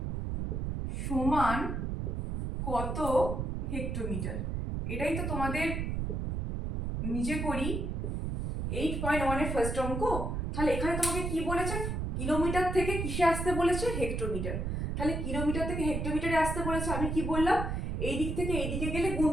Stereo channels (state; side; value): noise; right; rumble, 2 dB below the sound